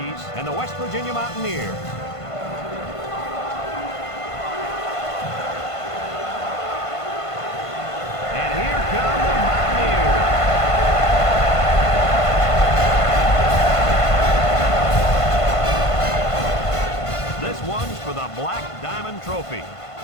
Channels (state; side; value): late; right; 1.5 ms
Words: and the West Virginia Mountaineers. And here come the Mountaineers. This one's for the Black Diamond Trophy.